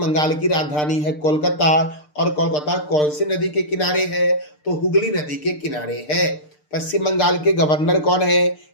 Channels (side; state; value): right; late; 6.7 ms